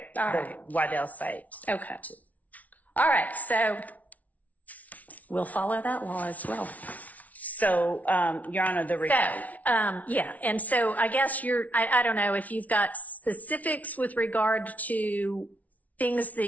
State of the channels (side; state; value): right; late; 0.072 ms